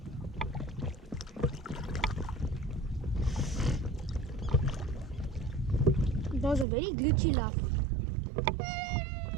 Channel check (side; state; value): left; drops out; at 6.7 s